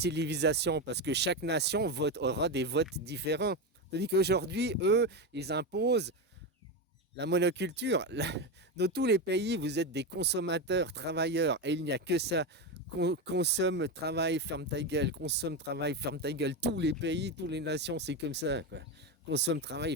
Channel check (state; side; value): normal; both; correlation 0.14